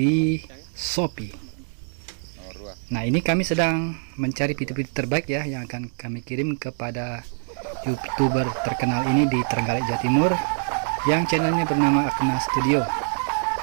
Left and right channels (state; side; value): silent; left; 62 dB below the other